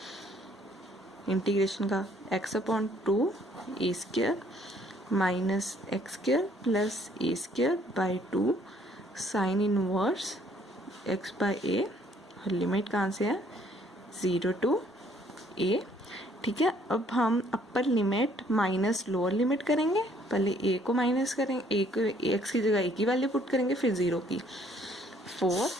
इंटीग्रेशन का, x upon 2 a square minus x square plus a square by 2 sine inverse x by a, और लिमिट कहाँ से है 0 टू a, ठीक है। अब हम अपर लिमिट माइनस लोअर लिमिट करेंगे, पहले a को माइनस करेंगे, a को x की जगह a की वैल्यू पुट करेंगे, फिर 0 की 4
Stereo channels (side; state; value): both; normal; correlation 0.63